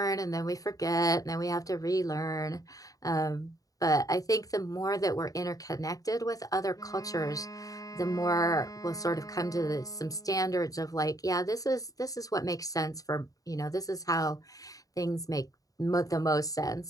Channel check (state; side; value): late; right; 0.17 ms